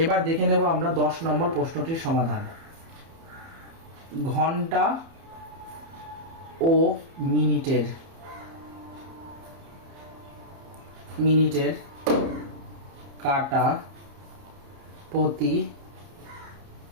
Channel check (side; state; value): left; late; 30 ms